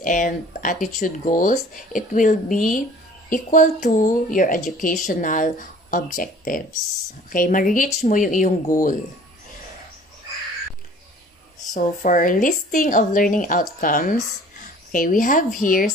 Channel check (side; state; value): both; normal; correlation 0.50